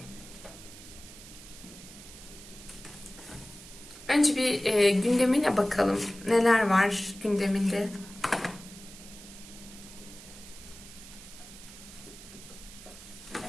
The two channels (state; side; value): noise; right; hiss, 17 dB below the sound